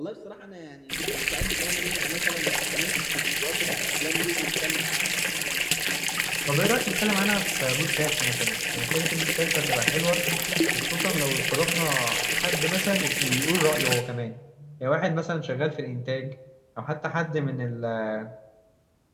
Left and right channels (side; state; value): both; identical; correlation 1.00